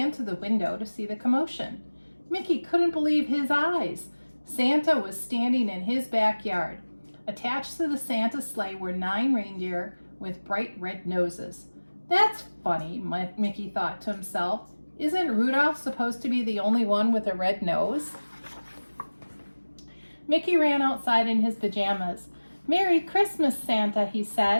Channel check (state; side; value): inverted; both; correlation -1.00